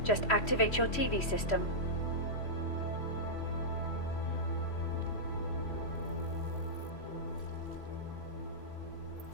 Just activate your TV system.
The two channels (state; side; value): late; right; 3.1 ms